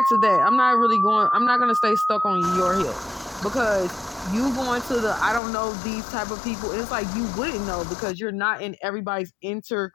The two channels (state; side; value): drops out; right; at 5.4 s